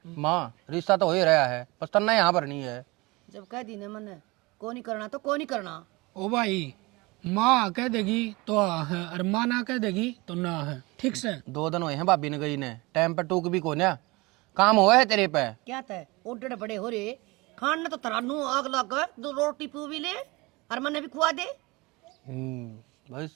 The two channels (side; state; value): left; quieter; 23.9 dB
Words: माँ रिश्ता तो हो ही रहा है बस तन्ना यहाँ पर नहीं है। जब कह दी ने मन को नहीं करना तो को नहीं करना। ओ भाई माँ कह देगी तो हाँ है और माँ ना कह देगी तो ना है ठीक से। 2 दिन हुए हैं भाभी ने गई ने, टाइम पर टूक भी को ना काम हुआ है तेरे पे। क्या तय ओडे बड़े हो रे खान ने तो तरानू आग लग 2 रोटी पू भी ले और मने भी खुआ दे। भाई